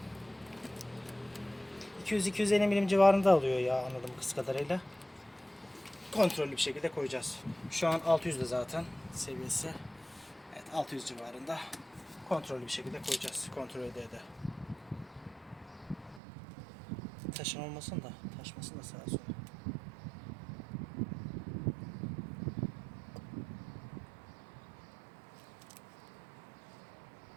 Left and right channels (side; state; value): left; drops out; at 16.2 s